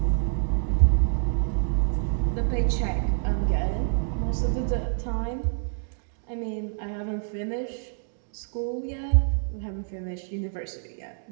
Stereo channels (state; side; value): silent; left; digital silence